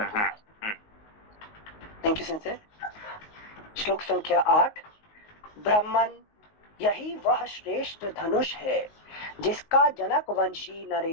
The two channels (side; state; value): right; late; 19 ms